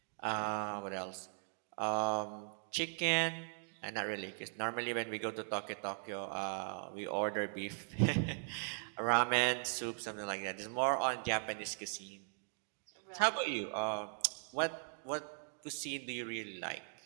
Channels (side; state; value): left; silent; digital silence